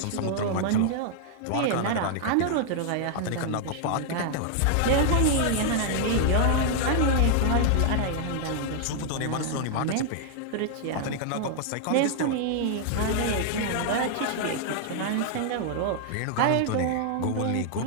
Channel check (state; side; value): different; both; correlation 0.00